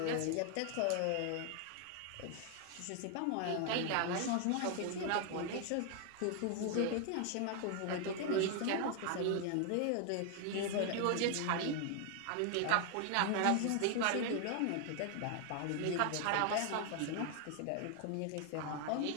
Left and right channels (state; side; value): different; both; correlation 0.00